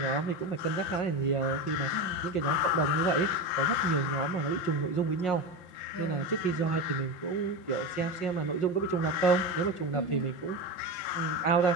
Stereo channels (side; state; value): right; late; 5.9 ms